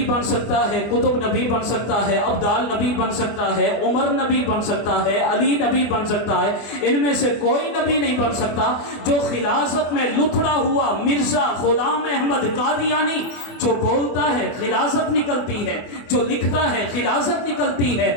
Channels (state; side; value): late; right; 24 ms